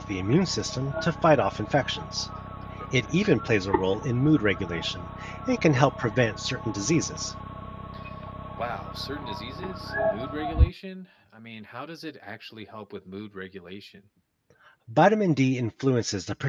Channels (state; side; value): identical; both; correlation 1.00